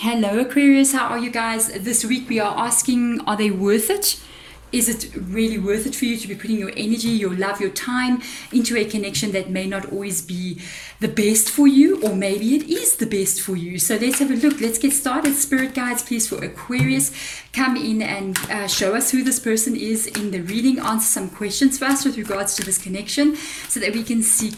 Aquarius, how are you guys? This week we are asking, are they worth it? Is it really worth it for you to be putting your energy, your love, your time into a connection that may not always be the best for you, or maybe it is the best for you? So let's have a look. Let's get started. Spirit guides, please, for Aquarius, come in and show us who this person is in the reading. Answer some questions for us with regards to this connection so that we can see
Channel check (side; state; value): both; identical; correlation 1.00